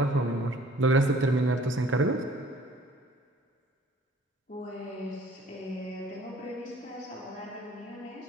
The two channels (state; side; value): normal; both; correlation 0.54